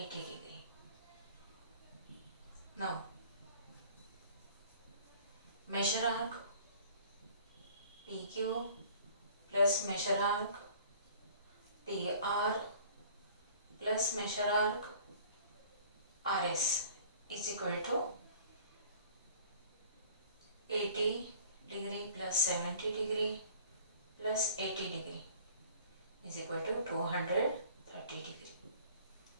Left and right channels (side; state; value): both; inverted; correlation -0.50